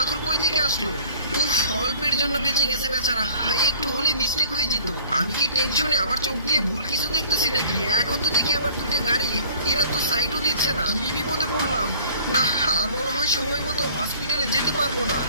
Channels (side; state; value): both; inverted; correlation -0.48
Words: কই থেকে আসলো? উফ, অল্পের জন্য বেঁচে গেছে বেচারা। হায়, একটু হলে মিস্টেক হয়ে যেত। আমি কি টেনশনে আমার চোখ দিয়ে ভুল কিছু দেখতেছি নাকি? এখন তো দেখি আবার দুটো গাড়ি, এরা তো সাইডও দিচ্ছে না। কি বিপদে পড়লাম! না, আর মনে হয় সময় মতো হসপিটালে যেতে পারবো না।